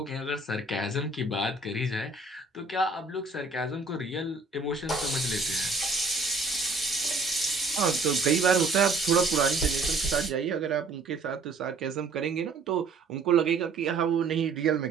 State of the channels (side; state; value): left; quieter; 3.8 dB